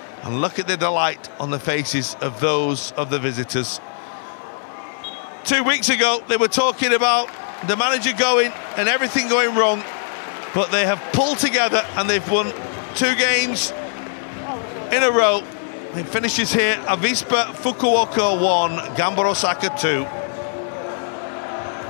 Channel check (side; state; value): right; silent; 56 dB below the other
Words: And look at the delight on the faces of those of the visitors. 2 weeks ago, they were talking about the manager going and everything going wrong, but they have pulled together and they've won 2 games in a row. It finishes here, Avispa Fukuoka 1, Gamba Osaka 2.